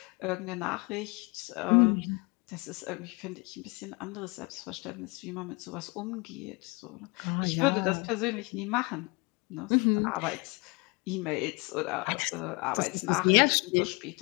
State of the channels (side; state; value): right; quieter; 28.7 dB